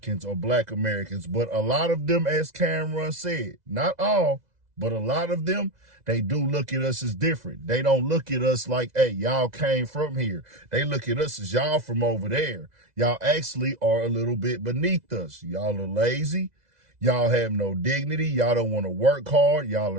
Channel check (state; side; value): late; left; 2.0 ms